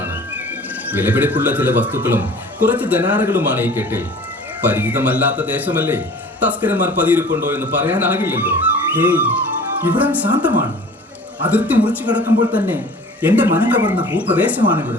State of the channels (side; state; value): both; normal; correlation 0.45